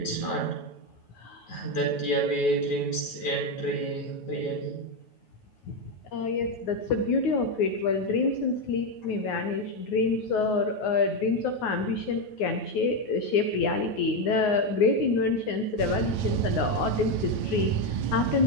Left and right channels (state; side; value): late; right; 9.4 ms